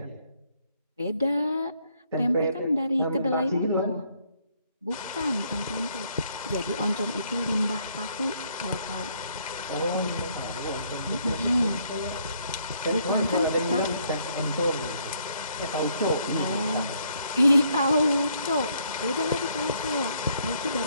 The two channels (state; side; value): inverted; both; correlation -0.69